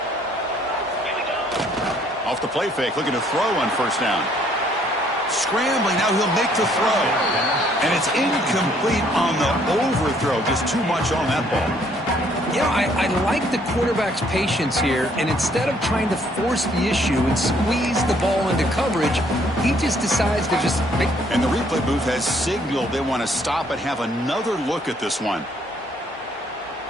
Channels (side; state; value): both; normal; correlation 0.65